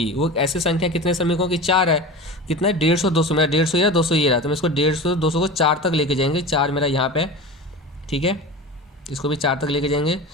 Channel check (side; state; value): both; normal; correlation 0.31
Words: वो ऐसे संख्या कितने श्रमिकों की 4 है। कितना है 150, 200। मेरा 150 ये रहा, 200 ये रहा, तो मैं इसको 150, 200 को 4 तक लेके जाएंगे। 4 मेरा यहाँ पे, ठीक है, इसको भी 4 तक लेके जाएंगे,